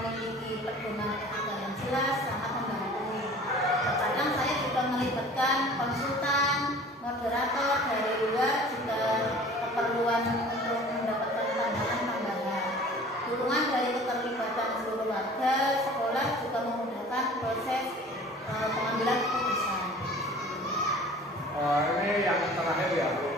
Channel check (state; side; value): normal; both; correlation 0.45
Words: pedoman etika yang jelas sangat membantu. Terkadang saya juga melibatkan konsultan, moderator dari luar jika keperluan untuk mendapatkan pandangan tambahan. Dukungan dari keterlibatan seluruh warga sekolah juga memudahkan proses pengambilan keputusan. Ini yang terakhir ya Bu,